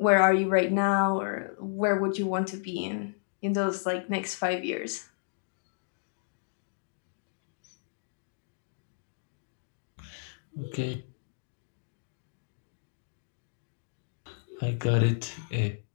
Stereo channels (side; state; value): right; silent; digital silence